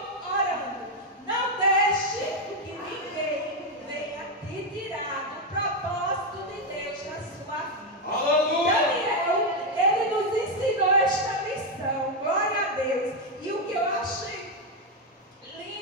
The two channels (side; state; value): both; normal; correlation 0.04